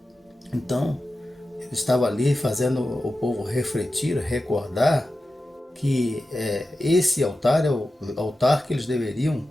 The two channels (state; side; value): normal; both; correlation 0.93